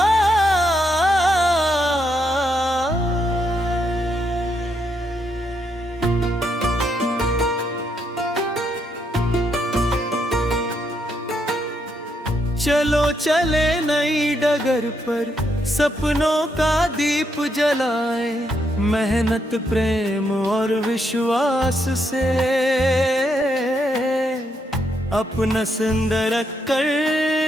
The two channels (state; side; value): normal; both; correlation 0.78